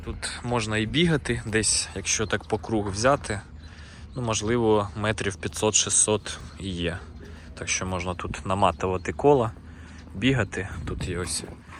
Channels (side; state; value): both; identical; correlation 1.00